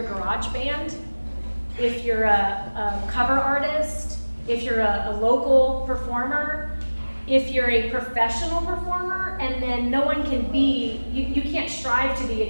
garage band, if you're a cover artist, if you're a local performer, if you're a professional performer, and then no one can be, you can't strive to be,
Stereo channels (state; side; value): inverted; both; correlation -1.00